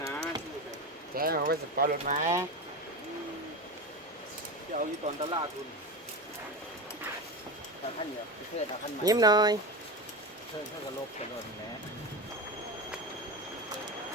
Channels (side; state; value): both; normal; correlation 0.22